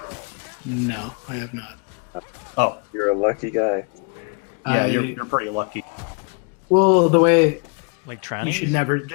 no, I have not. Oh, You're a lucky guy. yeah, I- you're pretty lucky. Well, the way Like you trannies?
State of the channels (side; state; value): right; quieter; 35.1 dB